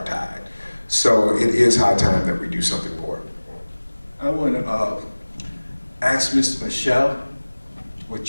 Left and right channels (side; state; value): both; inverted; correlation -1.00